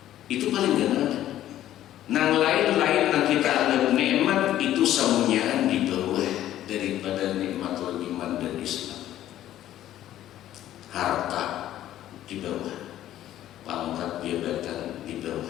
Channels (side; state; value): right; quieter; 12.7 dB